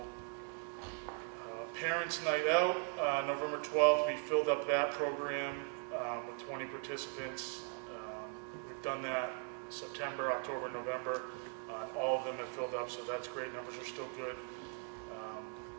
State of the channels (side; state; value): left; quieter; 39.9 dB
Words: Parents Night Out, November 12th, we filled up that program with 20 participants. We've done that September, October, November. All of them have filled up, so that's great. Numbers are still good.